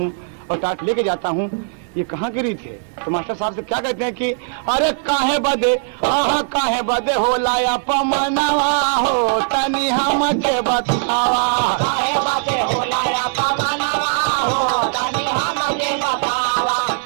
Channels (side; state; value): left; silent; digital silence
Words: और टाट लेके जाता हूँ, ये कहाँ की रीत है। तो मास्टर साहब से क्या कहते हैं कि अरे काहे बदे, हाँ काहे बदे होला अपमनवा हो, तनी हमके बतावा। काहे बदे होला अपमनवा हो, तनी हमके बतावा,